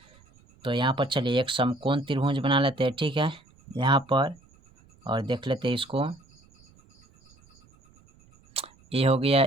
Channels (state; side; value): noise; right; rumble, 30 dB below the sound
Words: तो यहाँ पर चलिए एक समकोण त्रिभुज बना लेते हैं। ठीक है, यहाँ पर और देख लेते हैं इसको। ए हो गया